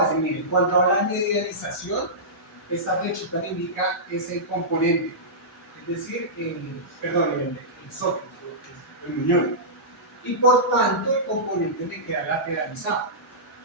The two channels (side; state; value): both; normal; correlation -0.16